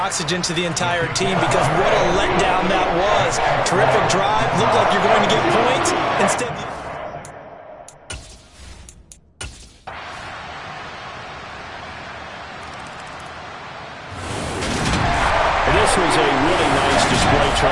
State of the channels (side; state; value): both; identical; correlation 1.00